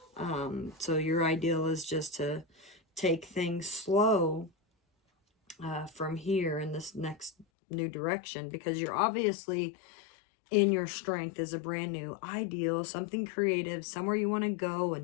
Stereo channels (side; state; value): right; drops out; at 7.5 s